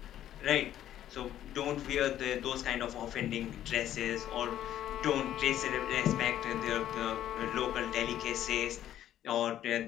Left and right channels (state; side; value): quieter; right; 11.8 dB